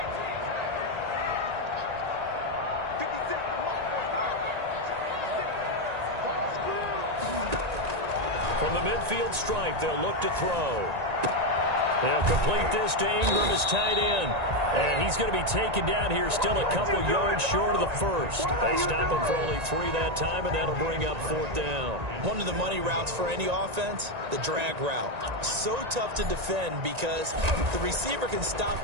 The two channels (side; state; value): left; late; 1.9 ms